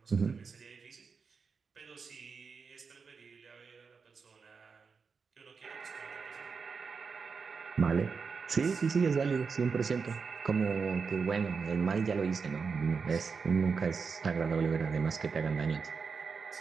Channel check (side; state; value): left; quieter; 5.3 dB